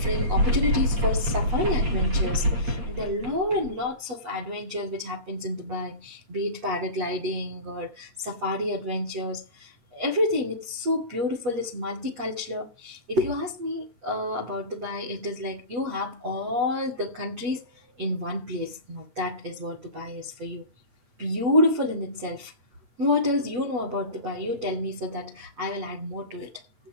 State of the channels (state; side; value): late; left; 8.2 ms